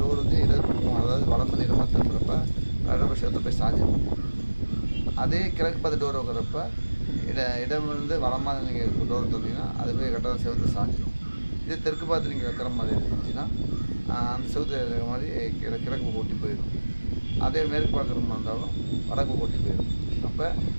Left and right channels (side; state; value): both; inverted; correlation -1.00